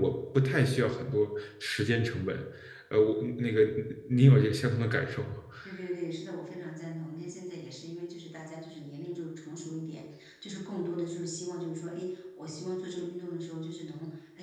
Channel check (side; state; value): both; identical; correlation 1.00